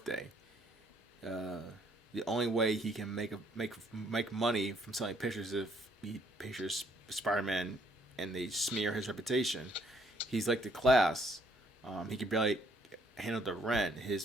Uh, the only way he can make money from selling pictures if he pictures Spider-Man and they smear his reputation. He's like the class. He can barely handle the rent.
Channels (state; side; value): normal; both; correlation 0.66